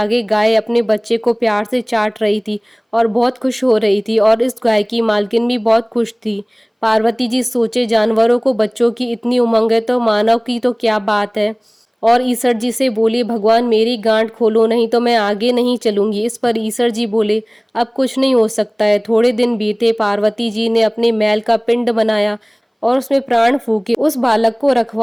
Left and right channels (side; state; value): both; identical; correlation 1.00